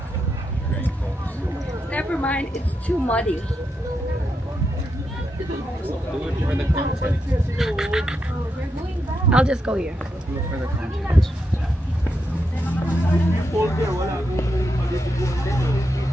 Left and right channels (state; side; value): normal; both; correlation 0.84